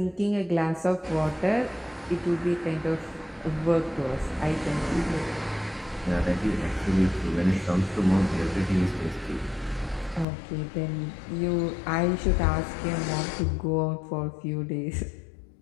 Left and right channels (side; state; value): right; drops out; at 10.2 s